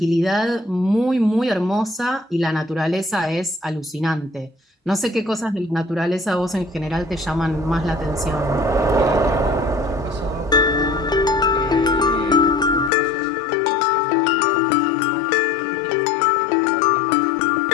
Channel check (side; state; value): right; drops out; at 12.9 s